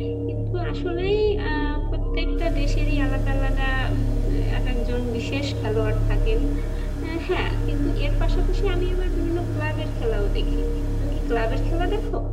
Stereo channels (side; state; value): both; identical; correlation 1.00